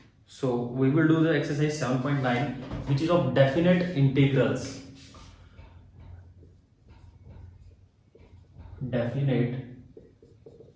So we will do the exercise 7.9 which is of definite integrals. Definite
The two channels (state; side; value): identical; both; correlation 1.00